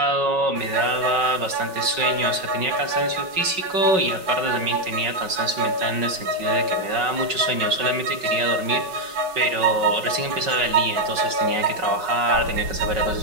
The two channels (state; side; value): late; left; 5.4 ms